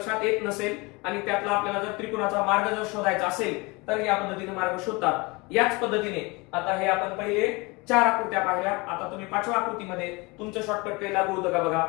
येत नसेल आणि त्यातला आपल्याला जर त्रिकोणाचा मार्ग जर शोधायचा असेल तर या पद्धतीने मार्ग शोधतात. याच पद्धतीने आता हे आपण पहिले 4 आकृत्या पाहिल्या. आता तुम्ही 5व्या आकृतीमध्ये तुमचं शॉर्टकट काही लागू होतं का बघा.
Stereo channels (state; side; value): quieter; right; 25.8 dB